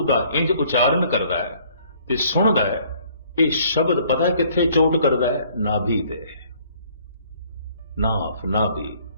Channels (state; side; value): inverted; both; correlation -0.59